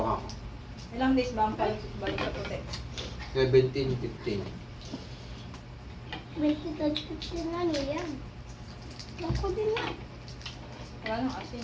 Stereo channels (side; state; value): both; identical; correlation 1.00